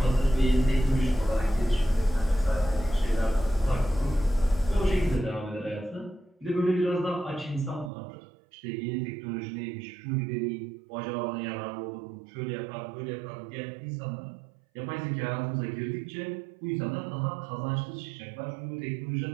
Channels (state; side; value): drops out; left; at 7.9 s